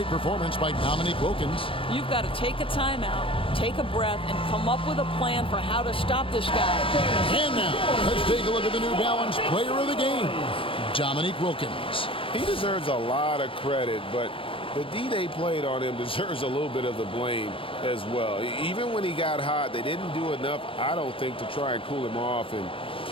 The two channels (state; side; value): late; right; 0.26 ms